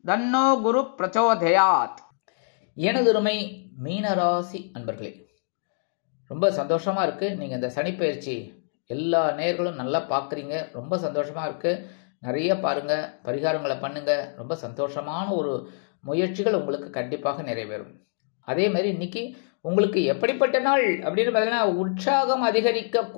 தன்னோ குரு பிரச்சோதயாத். எனதுரிமை மீனராசி அன்பர்களே, ரொம்ப சந்தோஷமா இருக்கு. நீங்க இந்த சனிப்பெயர்ச்சி எல்லா நேர்களும் நல்லா பார்க்குறீங்க. ரொம்ப சந்தோஷமா இருக்கு. நிறைய பாருங்க, பரிகாரங்களை பண்ணுங்க. ரொம்ப சந்தோஷமான ஒரு முயற்சிகள் உங்களுக்கு கண்டிப்பாக நிறைவேறும். அதே மாதிரி இன்னைக்கு உங்களுக்கு எப்படிப்பட்ட நாள் அப்படின்னு பார்த்தீங்கன்னா, உற்சாகம்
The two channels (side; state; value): right; silent; digital silence